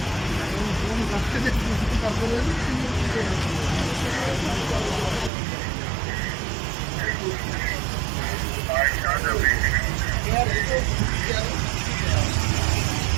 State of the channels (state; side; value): drops out; left; at 5.3 s